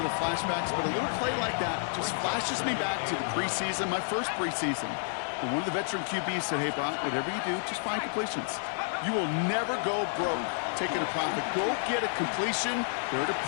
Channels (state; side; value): silent; right; 58 dB below the other